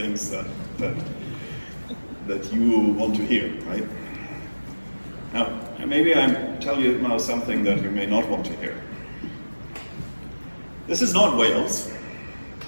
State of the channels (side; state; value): both; inverted; correlation -1.00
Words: that you want to hear, right? Now, maybe I tell you now something that you may not want to hear. This is not Wales.